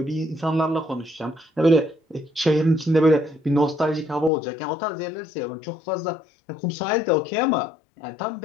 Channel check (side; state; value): right; drops out; at 4.3 s